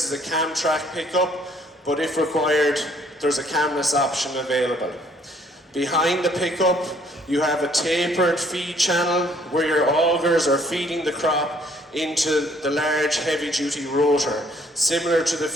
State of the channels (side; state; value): both; normal; correlation 0.62